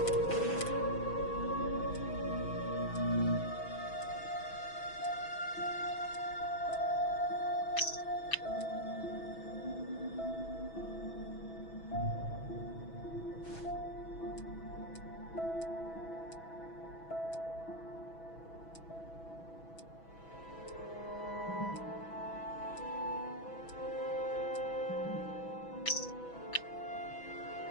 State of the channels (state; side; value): late; right; 6.1 ms